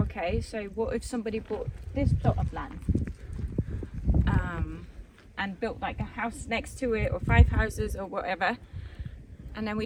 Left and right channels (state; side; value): identical; both; correlation 1.00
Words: so what if somebody bought this plot of land and built like a house next to it or 5 houses or whatever. And then